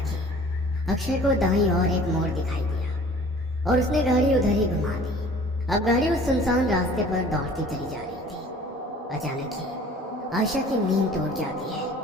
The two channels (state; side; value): normal; both; correlation 0.49